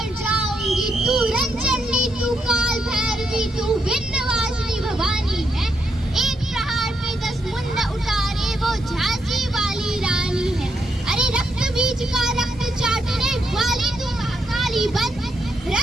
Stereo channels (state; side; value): normal; both; correlation 0.80